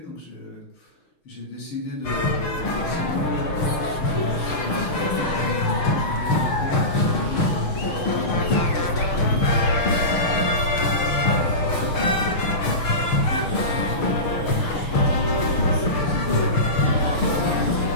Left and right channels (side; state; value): right; late; 6.6 ms